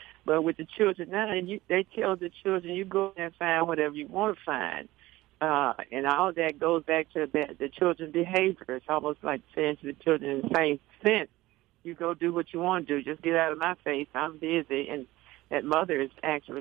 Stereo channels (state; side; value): quieter; left; 17.9 dB